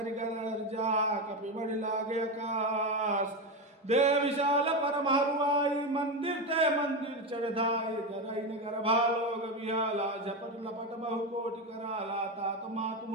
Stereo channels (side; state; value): both; normal; correlation 0.14